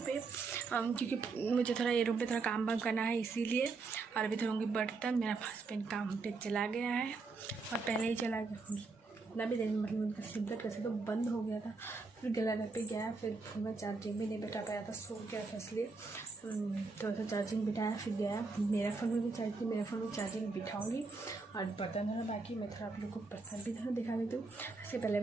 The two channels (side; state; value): left; quieter; 4.1 dB